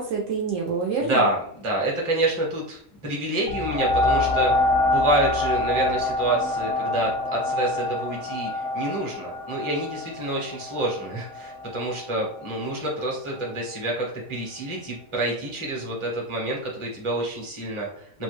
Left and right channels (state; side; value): normal; both; correlation 0.24